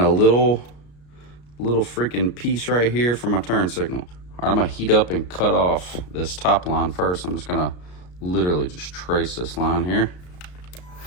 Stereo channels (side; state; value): right; late; 33 ms